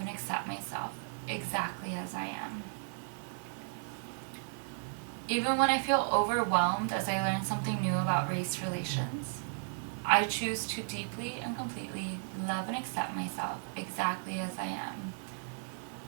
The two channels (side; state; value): left; silent; 55 dB below the other